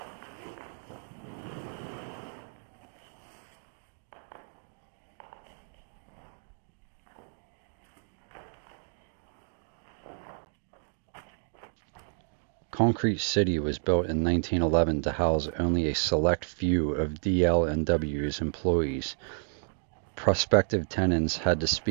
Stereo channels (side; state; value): left; silent; digital silence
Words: Concrete City was built in 1911 to house only a select few of DL&W's employees. Prospective tenants had to